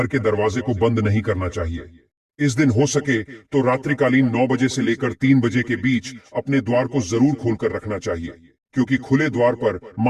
के दरवाजे को बंद नहीं करना चाहिए। इस दिन हो सके तो रात्रिकालीन 9 बजे से लेकर 3 बजे के बीच अपने द्वार को जरूर खोलकर रखना चाहिए, क्योंकि खुले द्वार पर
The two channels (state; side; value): identical; both; correlation 1.00